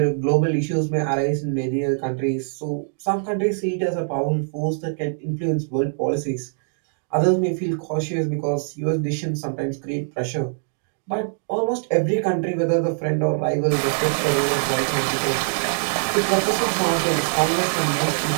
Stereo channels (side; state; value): left; silent; digital silence